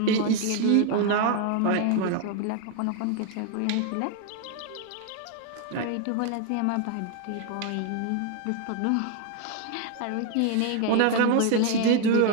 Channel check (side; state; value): both; different; correlation 0.01